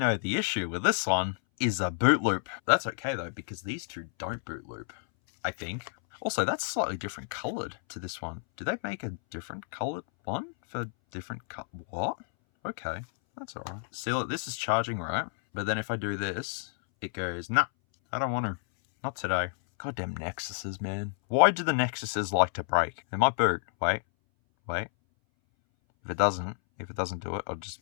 the issue with this one is a boot loop. That's okay though, because these two don't boot loop, I think. Also, that's slightly different colored to this one. Do they make a different colored one for different what? Okay, that's all right. See, look, this is charging, right? But then if I do this, it goes, nah, I don't want to. Not today. Goddamn Nexuses, man. Why do the Nexuses like to break? They might boot. Wait. If it doesn't do it, I'll just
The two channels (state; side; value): silent; right; 58 dB below the other